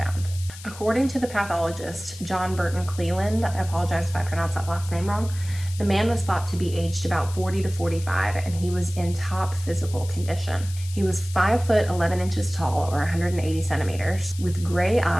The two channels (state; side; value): noise; left; hiss, 16 dB below the sound